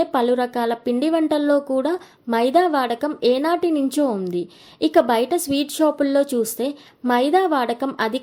పలు రకాల పిండి వంటల్లో కూడా మైదా వాడకం ఏనాటి నుంచో ఉంది. ఇక బయట స్వీట్ షాపుల్లో చూస్తే మైదా వాడకం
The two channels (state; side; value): identical; both; correlation 1.00